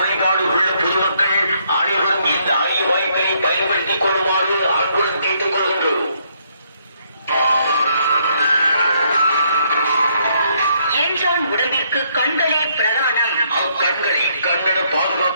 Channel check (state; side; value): inverted; both; correlation -0.71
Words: உள்ள பொதுமக்கள் அனைவரும் இந்த அரிய வாய்ப்பினை பயன்படுத்திக் கொள்ளுமாறு அன்புடன் கேட்டுக் கொள்கின்றோம். என்றான் உடம்பிற்கு கண்களே பிரதானம். அக்கண்களை கண்ணட